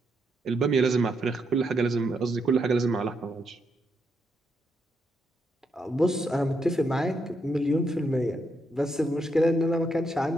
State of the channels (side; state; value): both; normal; correlation 0.79